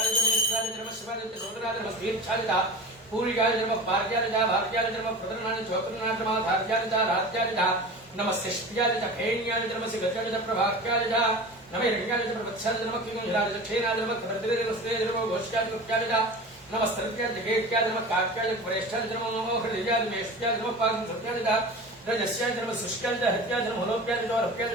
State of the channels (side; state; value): both; normal; correlation 0.33